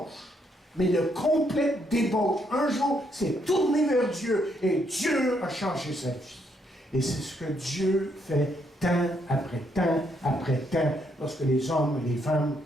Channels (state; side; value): normal; both; correlation 0.74